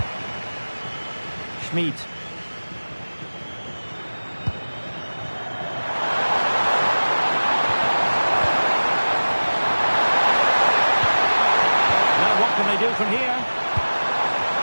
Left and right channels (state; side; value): inverted; both; correlation -1.00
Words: Schmid. Now what can they do from here?